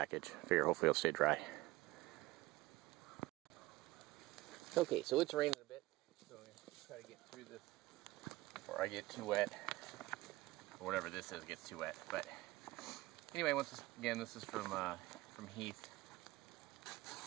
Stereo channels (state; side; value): quieter; left; 19.0 dB